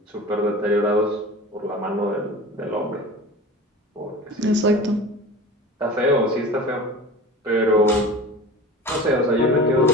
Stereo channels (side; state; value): both; normal; correlation 0.36